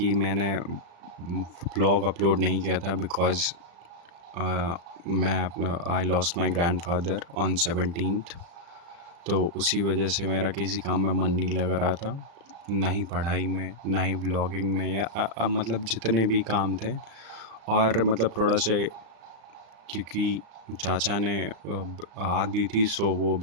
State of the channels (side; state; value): left; late; 35 ms